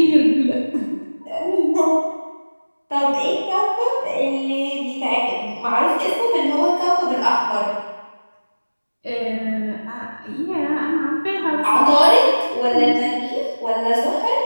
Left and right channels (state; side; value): inverted; both; correlation -1.00